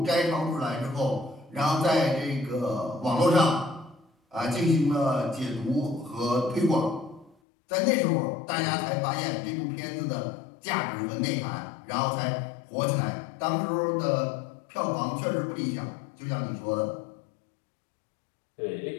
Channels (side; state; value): right; drops out; at 7.4 s